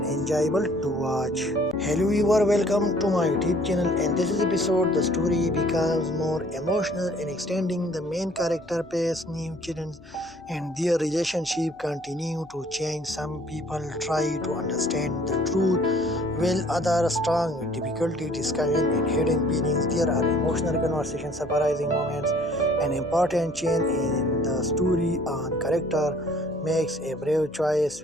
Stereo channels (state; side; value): noise; left; hum, 29 dB below the sound